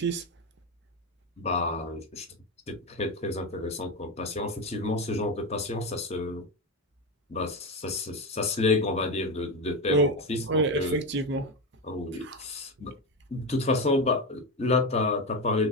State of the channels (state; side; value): normal; both; correlation 0.15